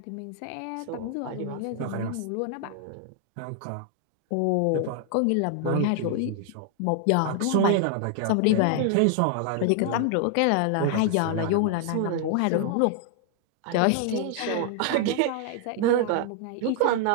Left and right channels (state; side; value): different; both; correlation 0.00